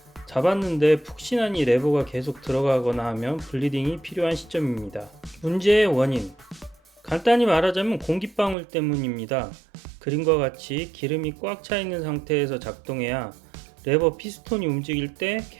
잡았는데 푹신하니 레버가 계속 들어가거나 하면 블리딩이 필요한 시점입니다. 문제의 원인, 간단히 말하자면 공기방울 때문입니다. 그림과 같이 기름이 꽉 차 있는 상태에서 작동해야 레버 피스톤이 움직일 때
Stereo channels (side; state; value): left; drops out; at 8.6 s